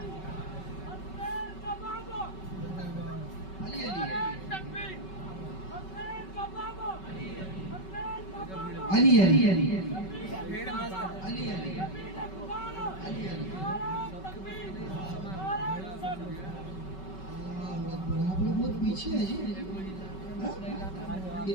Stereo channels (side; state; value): right; late; 5.3 ms